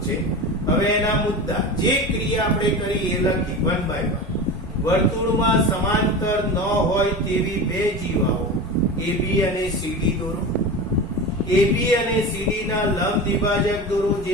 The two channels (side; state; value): both; normal; correlation 0.28